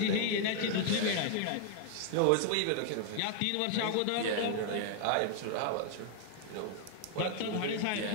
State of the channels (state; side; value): different; both; correlation 0.00